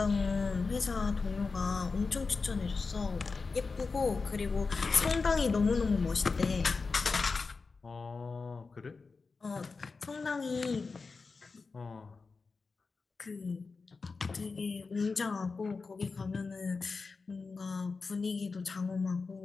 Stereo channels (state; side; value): quieter; right; 4.4 dB